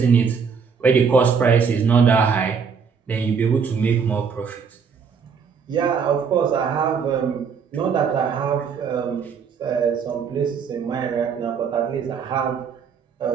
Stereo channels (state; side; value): quieter; left; 6.2 dB